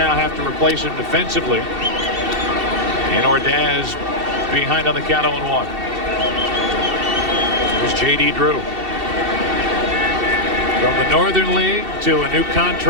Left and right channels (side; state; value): left; late; 2.7 ms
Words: have to replace him defensively. And Ordaz behind on the count 0-1. Here's J.D. Drew. From the Northern League to a new